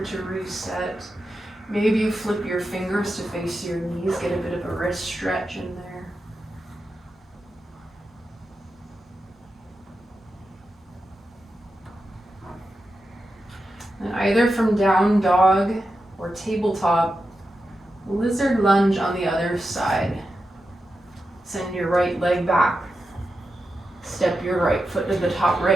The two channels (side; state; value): both; normal; correlation 0.89